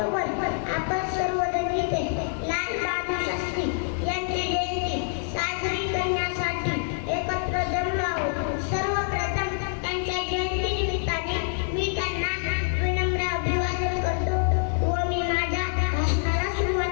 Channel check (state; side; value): silent; right; digital silence